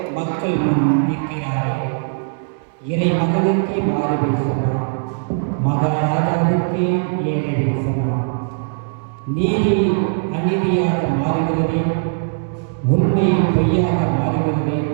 மக்கள் முன் நிற்கிறாரே. இறைமகனுக்கே மாறு பேசலாம், மகாராஜாவுக்கே ஏழை பேசலாம். நீதி அநீதியாக மாறுகிறதே, உண்மை பொய்யாக மாறுகிறதே.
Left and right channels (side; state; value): left; silent; digital silence